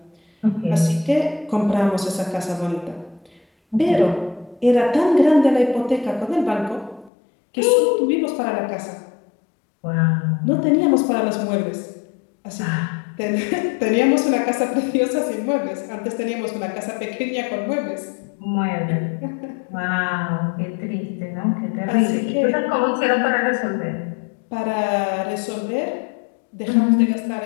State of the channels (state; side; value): drops out; right; at 7.1 s